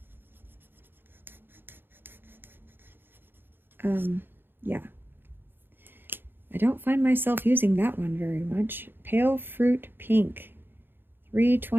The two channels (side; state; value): left; late; 0.10 ms